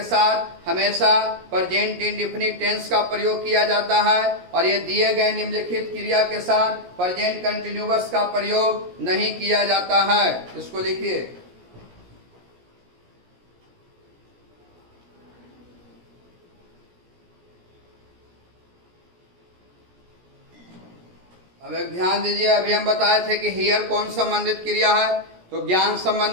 साथ हमेशा प्रेजेंट इंडेफिनिट टेंस का प्रयोग किया जाता है, और ये दिए गए निम्नलिखित क्रिया के साथ प्रेजेंट कंटिन्यूअस का प्रयोग नहीं किया जाता है। इसको लिखिए। अब एक ध्यान दीजिए, अभी हम बताए थे कि हियर कौन संबंधित क्रिया है, तो ज्ञान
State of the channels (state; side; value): late; left; 17 ms